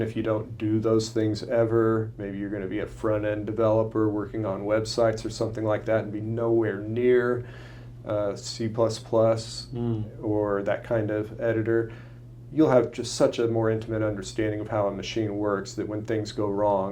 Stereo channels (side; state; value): both; identical; correlation 1.00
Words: if you don't do those things ever, maybe you're going to be a front-end developer working on websites or something like that and be nowhere near C++ or that kind of editor, you'll have just such a more intimate understanding of how a machine works that when things go